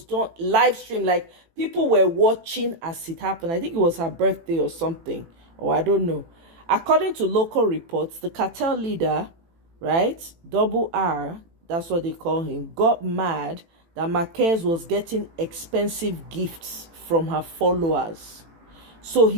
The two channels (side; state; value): left; late; 18 ms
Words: done live stream, like people were watching as it happened. I think it was her birthday or something, or I don't know. According to local reports, the cartel leader, right, Double R, that's what they call him, got mad that Marquez was getting expensive gifts from her followers. So